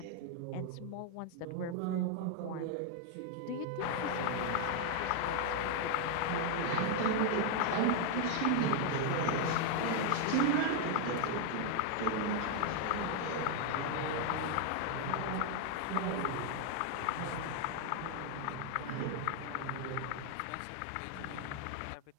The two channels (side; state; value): both; different; correlation 0.00